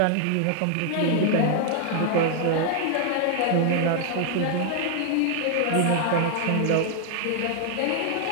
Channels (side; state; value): both; different; correlation 0.00